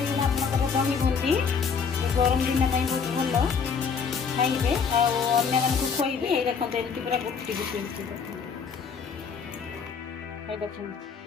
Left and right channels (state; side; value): quieter; right; 6.0 dB